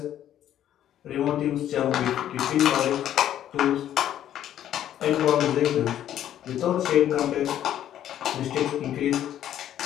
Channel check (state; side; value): quieter; right; 11.3 dB